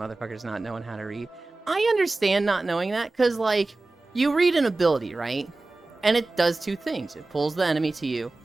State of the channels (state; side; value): quieter; left; 3.2 dB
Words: not knowing how to read. I understand not knowing that, because, like, you read an ability, right? And it does two things. It pulls the enemy to you